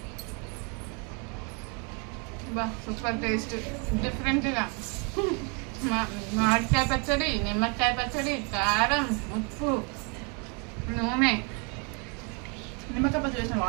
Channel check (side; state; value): left; quieter; 34.5 dB